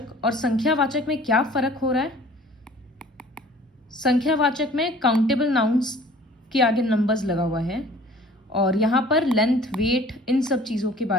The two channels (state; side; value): normal; both; correlation 0.50